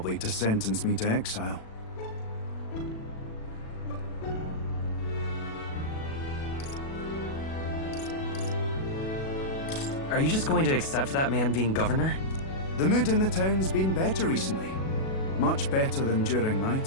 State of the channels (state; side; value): late; right; 37 ms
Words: to sentence me to exile. Are you just going to accept that man being governor? The mood in the town's been better recently. Much better than during my